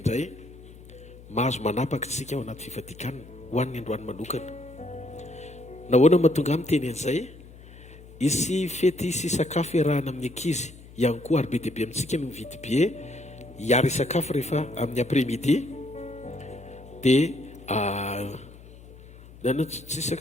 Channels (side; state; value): left; noise; hum, 20 dB below the sound